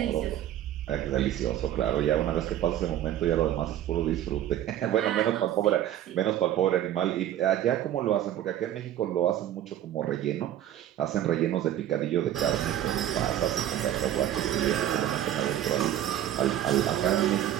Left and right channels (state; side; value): quieter; left; 11.7 dB